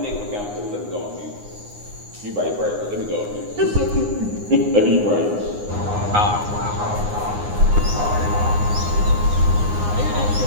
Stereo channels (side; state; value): left; late; 9.7 ms